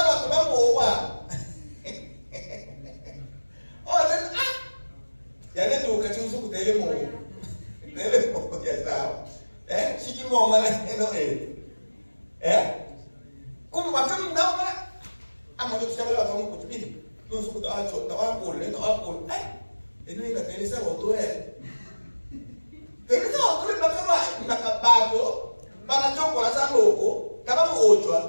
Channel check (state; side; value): inverted; both; correlation -1.00